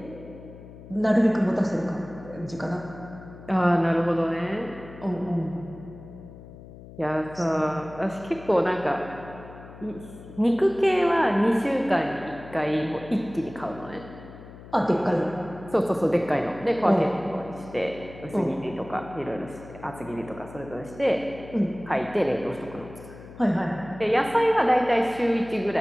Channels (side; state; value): left; noise; hum, 17 dB below the sound